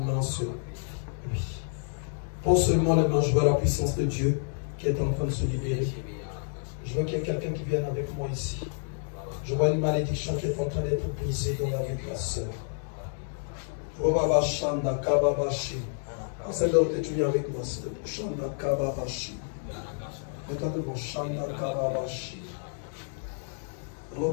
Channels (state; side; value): silent; right; digital silence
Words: sur lui. Pose seulement les mains, je vois la puissance de Dieu qui est en train de se libérer. Je veux qu'il y ait quelqu'un qui vienne avec moi ici. Je vois une malédiction qui est en train d'être brisée dans la vie de la sœur. Celle là où tu viens avec moi, c'est le Shanda Kababashi. Regarde devant Shanda Kababashi.